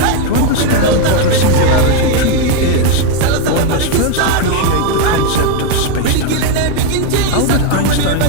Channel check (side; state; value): both; different; correlation 0.02